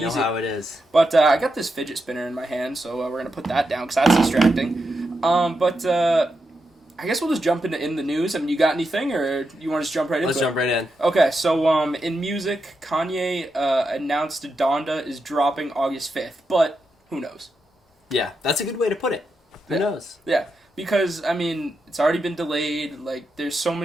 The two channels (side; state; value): both; normal; correlation 0.86